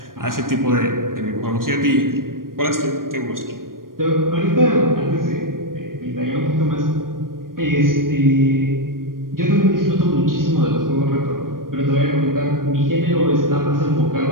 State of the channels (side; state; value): left; late; 0.91 ms